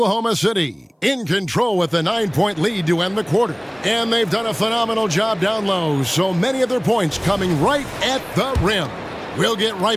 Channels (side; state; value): both; identical; correlation 1.00